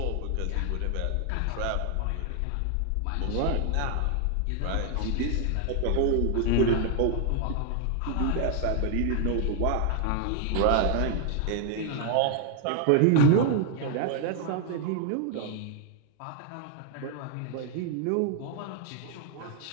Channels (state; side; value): different; both; correlation 0.00